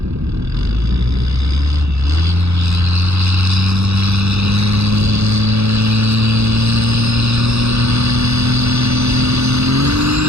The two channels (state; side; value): late; left; 0.79 ms